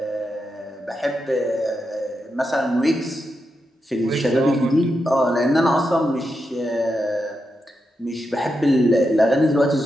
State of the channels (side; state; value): both; normal; correlation 0.86